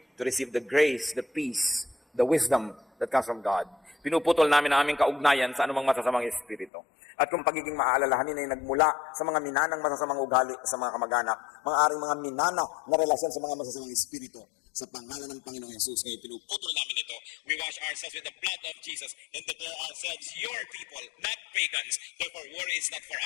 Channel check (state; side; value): drops out; right; at 6.7 s